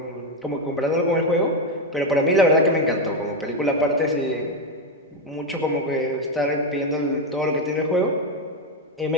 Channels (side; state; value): both; normal; correlation 0.08